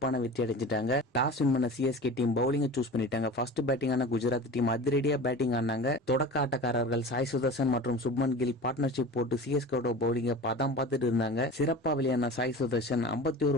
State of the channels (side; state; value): both; normal; correlation 0.35